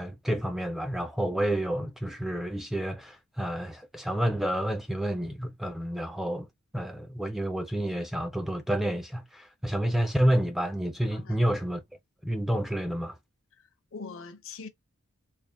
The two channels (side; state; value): both; normal; correlation 0.94